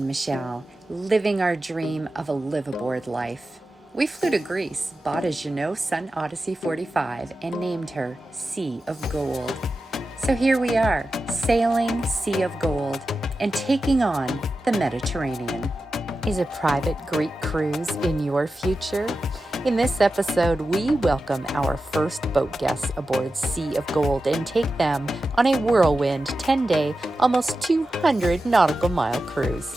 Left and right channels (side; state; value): both; normal; correlation 0.92